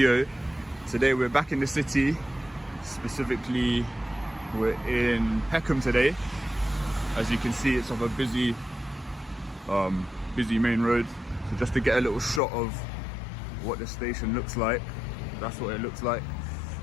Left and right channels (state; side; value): drops out; right; at 12.4 s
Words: Today we're back in the city, specifically we're in Peckham today. As you can see, it's off a busy main road. So just to get a little shot of what the station looks like, that's what it looks like.